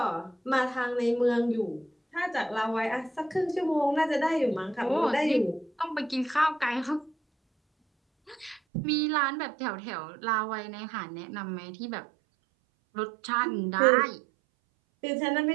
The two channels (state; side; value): drops out; left; at 8.6 s